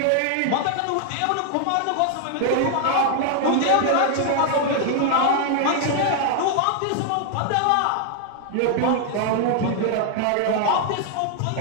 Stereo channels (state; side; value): different; both; correlation 0.00